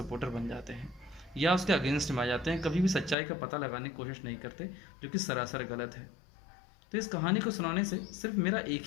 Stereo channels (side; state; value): right; drops out; at 3.2 s